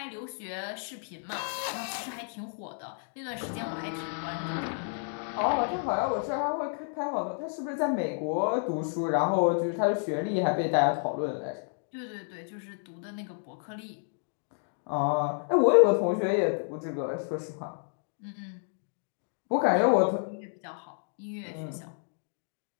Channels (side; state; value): right; silent; 57 dB below the other